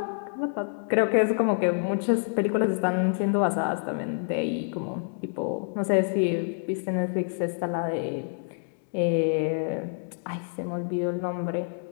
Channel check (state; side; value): silent; right; digital silence